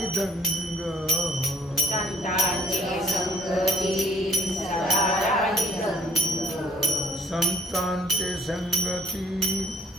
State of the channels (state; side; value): normal; both; correlation 0.58